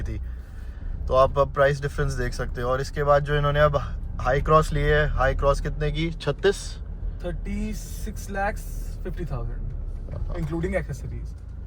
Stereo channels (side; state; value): both; identical; correlation 1.00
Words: थी। तो आप अब प्राइस डिफरेंस देख सकते हो। और इसके बाद जो इन्होंने अब हाई क्रॉस ली है, हाई क्रॉस कितने की? 36,50,000 इंक्लूडिंग एक्सेसरीज।